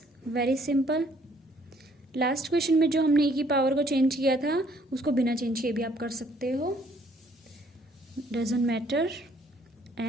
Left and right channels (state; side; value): normal; both; correlation 0.64